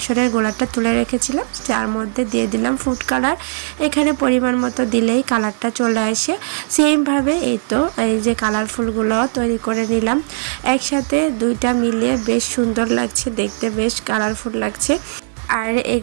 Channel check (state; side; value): silent; left; 67 dB below the other